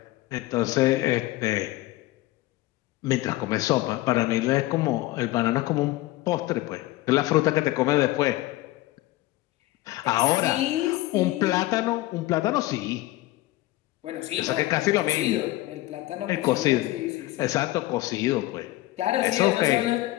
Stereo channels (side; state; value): right; quieter; 17.7 dB